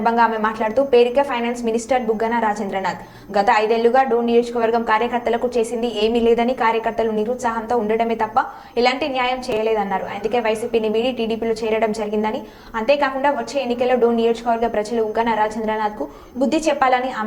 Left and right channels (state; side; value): identical; both; correlation 1.00